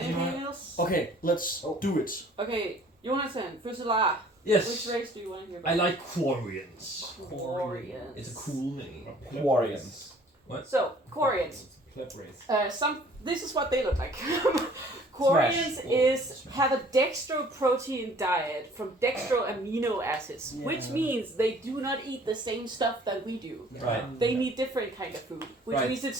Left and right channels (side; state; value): both; normal; correlation 0.54